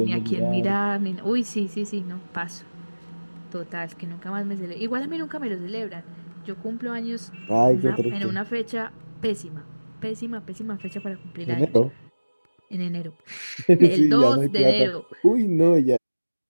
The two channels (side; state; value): both; inverted; correlation -1.00